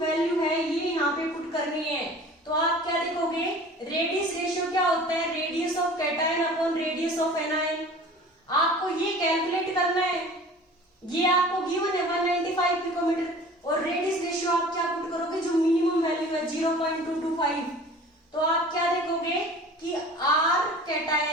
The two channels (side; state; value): both; normal; correlation 0.44